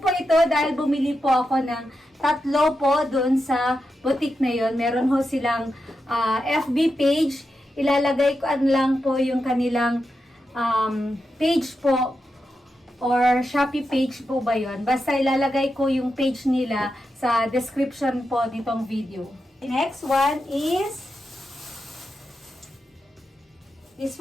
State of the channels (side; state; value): both; normal; correlation 0.88